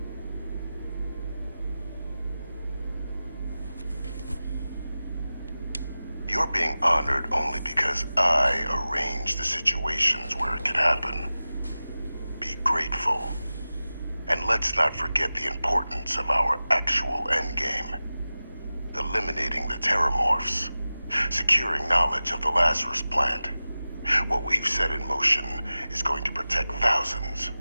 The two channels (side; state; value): both; inverted; correlation -0.96